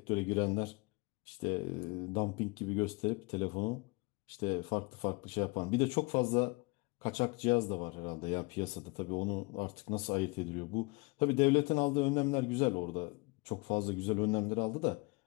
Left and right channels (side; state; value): right; quieter; 26.7 dB